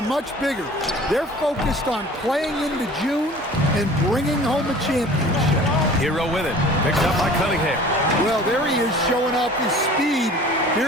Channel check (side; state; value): both; normal; correlation 0.45